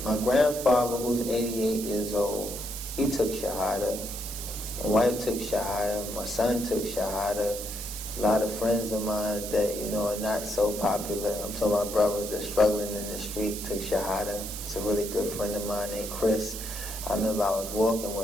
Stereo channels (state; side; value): noise; right; hiss, 8 dB below the sound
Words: my grandfather, who's 88 years old, he took Shahada. My wife took Shahada. My son took Shahada. A lot of friends of mine that, are not so popular. I'm talking about brothers that are struggling in the street took Shahada. It's a really good friend of mine named Chris. I remember I was walking